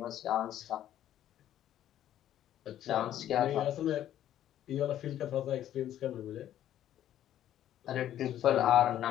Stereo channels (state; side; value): quieter; right; 11.7 dB